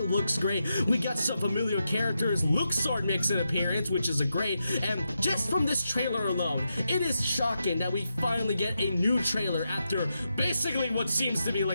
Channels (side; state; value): both; inverted; correlation -0.86